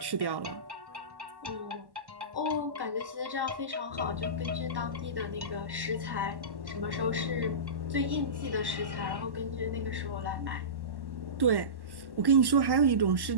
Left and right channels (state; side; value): late; left; 1.1 ms